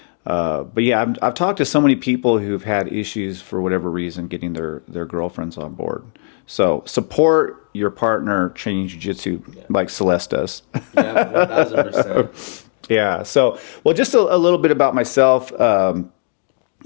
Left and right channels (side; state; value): right; silent; 67 dB below the other